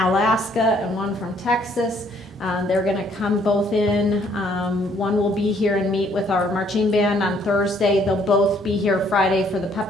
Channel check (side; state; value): both; normal; correlation 0.65